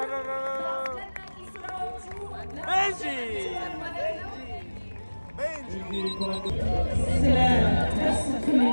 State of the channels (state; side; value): inverted; both; correlation -1.00